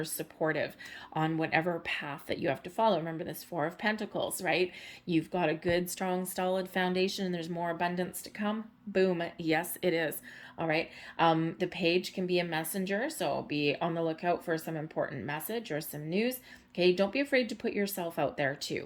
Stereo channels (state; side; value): identical; both; correlation 1.00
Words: supportive on whatever path that you have to follow. Remember this Four of Pentacles, right? You've got a good, strong, solid foundation and there's more abundance to come. Boom. Yes, it is. All right. The page can be a messenger, so be on the lookout for some important message or some news. Okay, don't be afraid to put yourself out there